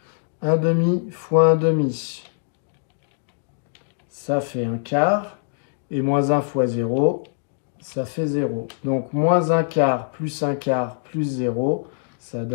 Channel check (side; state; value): right; silent; digital silence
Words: 1,5 fois 1,5, ça fait 1 quart. Et moins 1 fois 0, ça fait 0. Donc, moins 1 quart plus 0, ça